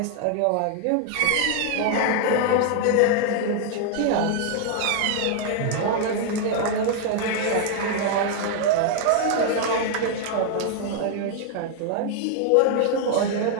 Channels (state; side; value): different; both; correlation 0.00